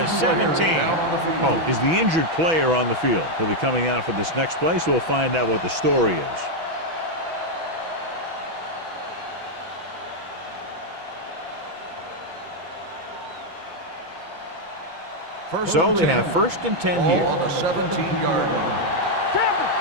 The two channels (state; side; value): late; left; 6.1 ms